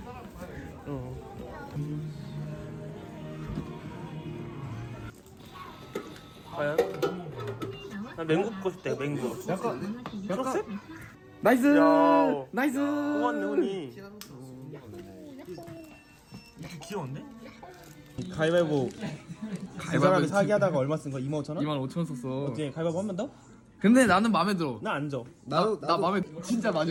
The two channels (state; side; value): identical; both; correlation 1.00